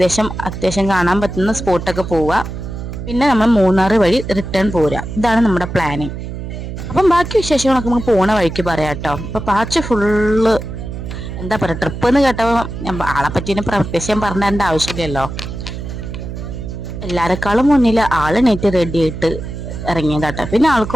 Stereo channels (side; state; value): right; noise; hum, 8 dB below the sound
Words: അത്യാവശ്യം കാണാൻ പറ്റുന്ന സ്പോട്ടൊക്കെ പോവുക. പിന്നെ നമ്മൾ മൂന്നാർ വഴി റിട്ടേൺ പോരുക. ഇതാണ് നമ്മുടെ പ്ലാനിങ്. അപ്പം ബാക്കി വിശേഷങ്ങളൊക്കെ നമുക്ക് പോണ വഴിക്ക് പറയാം കേട്ടോ. അപ്പൊ പാച്ച് ഫുള്ള് എന്താ പറയുക, ട്രിപ്പ് എന്ന് കേട്ടപ്പോൾ ആളെ പറ്റി പ്രത്യേകം പറഞ്ഞേണ്ട ആവശ്യമില്ലല്ലോ. എല്ലാരെക്കാളും മുന്നിൽ ആള് നെറ്റ് റെഡി ആയിട്ട് ഇറങ്ങിയതാട്ടോ. പിന്നെ